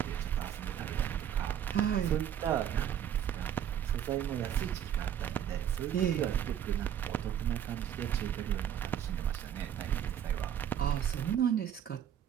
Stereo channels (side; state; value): left; quieter; 9.8 dB